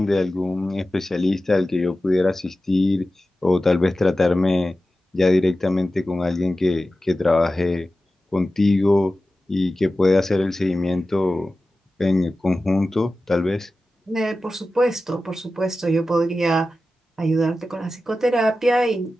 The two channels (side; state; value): both; normal; correlation 0.94